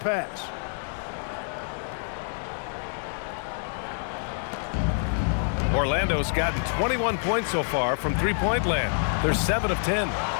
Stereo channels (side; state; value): right; silent; digital silence